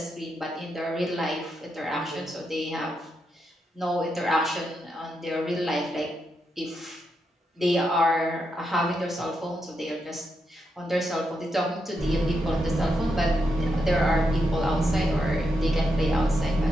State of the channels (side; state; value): both; normal; correlation 0.83